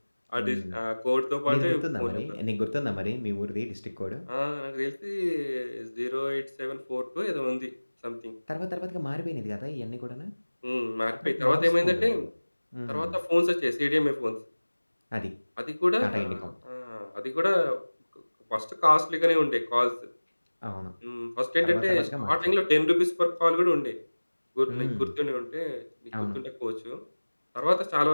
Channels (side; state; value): both; inverted; correlation -1.00